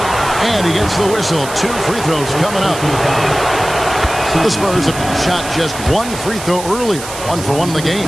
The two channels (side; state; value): right; noise; hiss, 11 dB below the sound